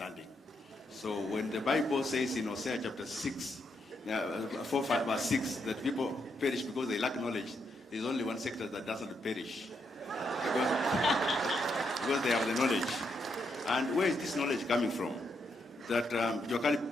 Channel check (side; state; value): both; normal; correlation 0.79